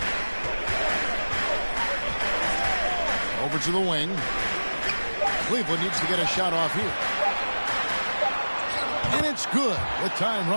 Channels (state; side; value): inverted; both; correlation -1.00